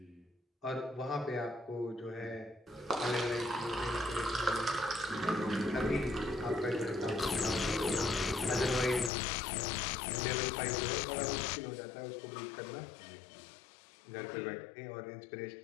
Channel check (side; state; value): right; drops out; at 9.1 s